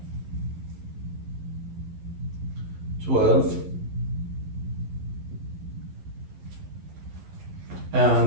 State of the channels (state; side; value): late; left; 11 ms